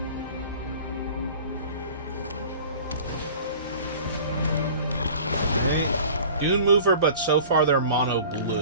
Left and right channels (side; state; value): both; inverted; correlation -0.44